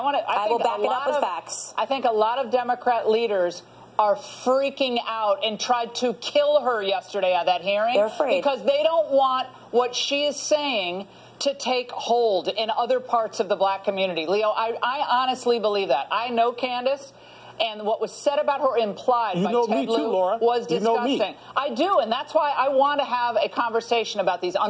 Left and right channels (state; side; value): identical; both; correlation 1.00